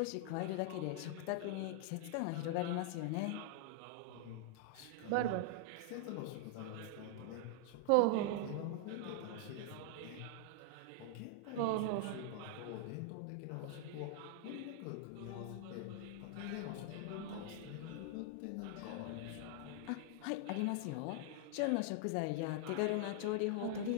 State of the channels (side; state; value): both; different; correlation -0.01